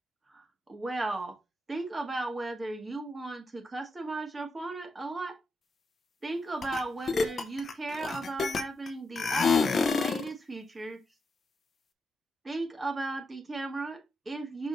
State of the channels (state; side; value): normal; both; correlation 0.84